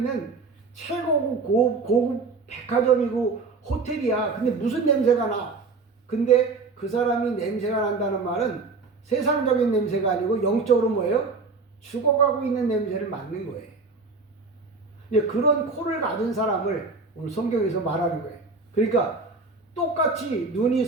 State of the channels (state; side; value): quieter; left; 4.1 dB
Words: 최고급 고급 백화점이고 호텔이야. 근데 무슨 냄새가 나? 근데 그 사람이 냄새가 난다는 말은 세상적인 냄새가 아니고 영적으로 뭐예요? 죽어가고 있는 냄새를 맡는 거예요. 그런 코를 가진 사람을 오늘 성경에서 말하는 거예요. 그러니까 똑같이 눈이